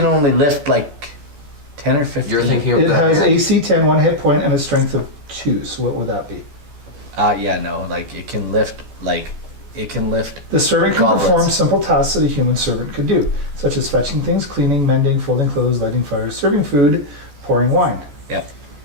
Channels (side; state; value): left; late; 14 ms